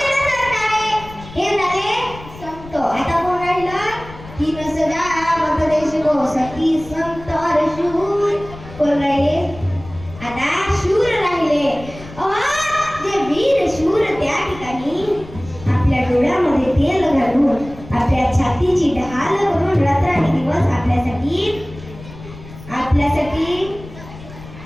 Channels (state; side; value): noise; left; rumble, 16 dB below the sound